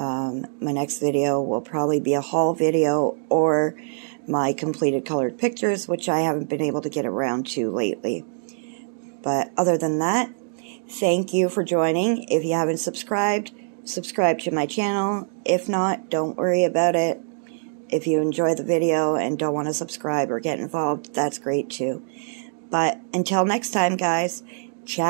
next video will probably be a haul video or my completed colored pictures, which I haven't been able to get around to lately. But other than that, thank you for joining. If you haven't subscribed, subscribe to my channel. If not, don't worry about it. If you enjoy the video and don't want to subscribe or get involved, that's great too. But until next time, guys,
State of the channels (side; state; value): left; silent; digital silence